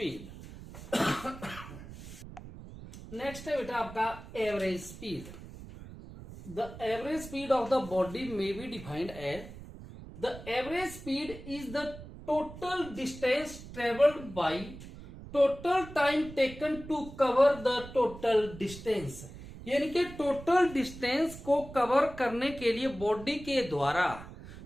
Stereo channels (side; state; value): right; noise; rumble, 14 dB below the sound